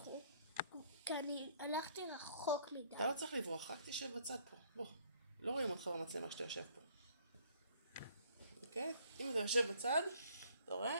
כי אני הלכתי רחוק מדי. אתה לא צריך לברוח, רק תשב בצד פה. בוא. לא רואים אותך במצלמה שאתה יושב פה. אוקיי? אם אתה יושב בצד, אתה רואה?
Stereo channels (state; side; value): inverted; both; correlation -0.60